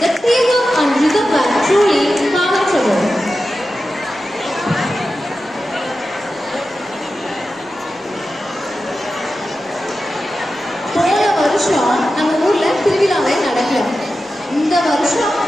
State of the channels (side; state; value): both; normal; correlation 0.92